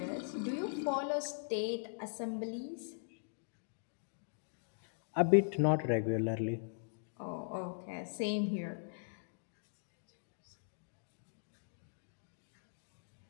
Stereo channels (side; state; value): right; silent; digital silence